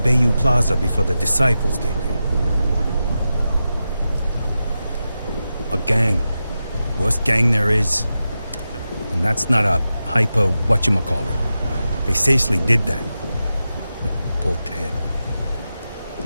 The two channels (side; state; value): both; inverted; correlation -0.91